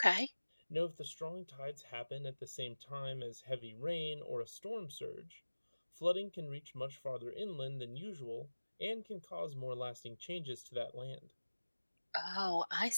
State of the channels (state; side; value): inverted; both; correlation -1.00